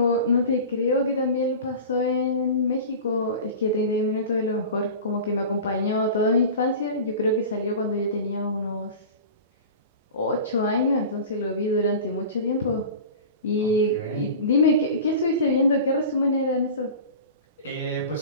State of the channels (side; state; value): both; inverted; correlation -0.34